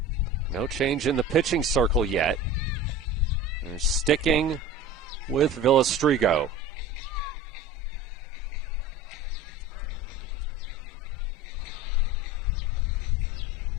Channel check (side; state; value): both; normal; correlation 0.36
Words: No change in the pitching circle yet. They're sticking with Villastrigo.